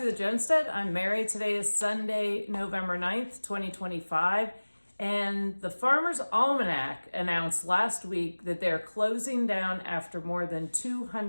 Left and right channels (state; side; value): inverted; both; correlation -1.00